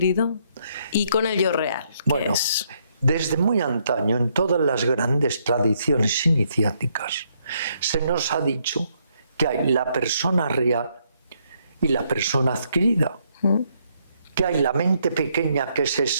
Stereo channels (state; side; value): inverted; both; correlation -0.73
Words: y con el yo real? Bueno, desde muy antaño, en todas las grandes tradiciones iniciáticas, se nos ha dicho que hay la persona real y la persona adquirida. que hay la mente pequeña, que es